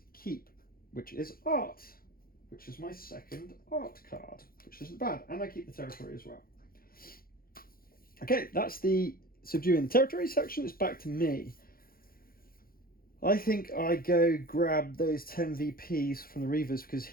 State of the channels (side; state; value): right; late; 0.42 ms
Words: keep, which is art, which is my 2nd art card, which isn't bad, and I keep the territory as well. Okay, that's the subduing the territory section. It's back to me. I think I go grab those 10 VPs from the Reavers because